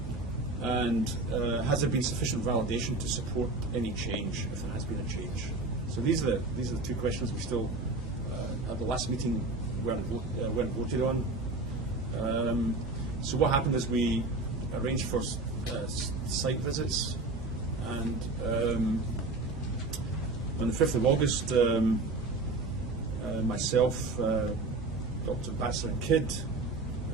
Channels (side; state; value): left; quieter; 3.2 dB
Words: And has there been sufficient validation to support any change, if there has been a change? So these are the 2 questions we still, at the last meeting, weren't voted on. So what happened is we arranged for site visits, and on the 5th of August, myself, Dr. Batzer and Kidd